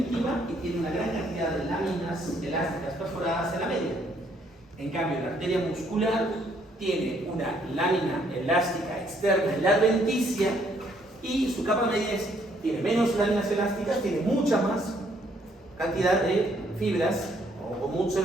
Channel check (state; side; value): normal; both; correlation 0.68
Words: y tiene una gran cantidad de láminas elásticas perforadas en la media. En cambio, la arteria muscular tiene una lámina elástica externa en la adventicia y su capa media tiene menos láminas elásticas, tiene mucha más cantidad de fibras o muchas